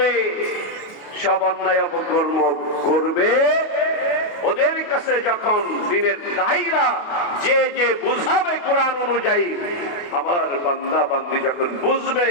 সব অন্যায় অপকর্ম করবে। ওদের কাছে যখন দিনের দায়ীরা যে যে বুঝাবে কোরআন অনুযায়ী, আমার বান্দা বান্দি যখন বুঝবে,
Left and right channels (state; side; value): late; right; 28 ms